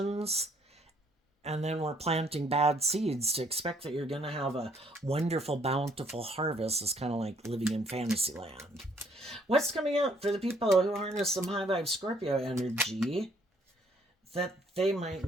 and then we're planting bad seeds to expect that you're going to have a wonderful, bountiful harvest. It's kind of like living in fantasy land. What's coming up for the people who harness some high vibe Scorpio energy that they might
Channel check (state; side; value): normal; both; correlation 0.65